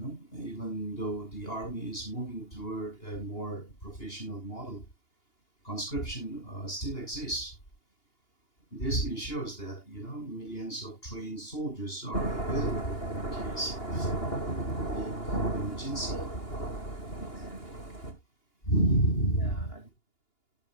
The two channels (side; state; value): right; late; 2.9 ms